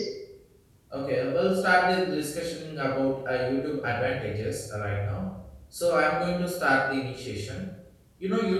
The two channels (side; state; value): both; identical; correlation 1.00